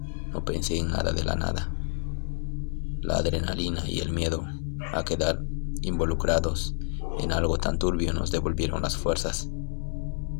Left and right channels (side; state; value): right; silent; 59 dB below the other